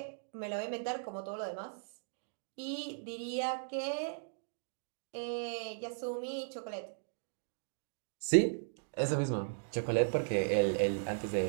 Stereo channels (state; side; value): silent; left; digital silence